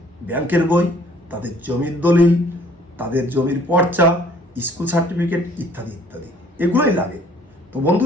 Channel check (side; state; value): both; normal; correlation 0.57